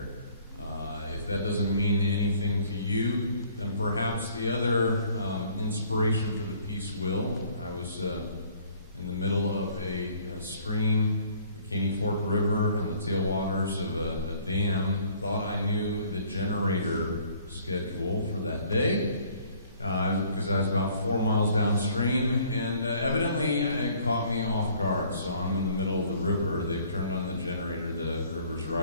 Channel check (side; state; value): both; inverted; correlation -0.58